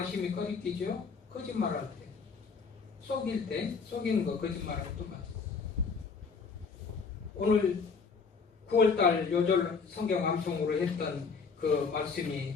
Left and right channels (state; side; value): quieter; right; 5.2 dB